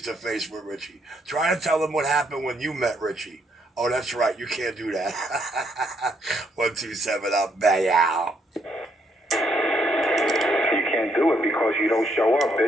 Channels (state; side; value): normal; both; correlation 0.73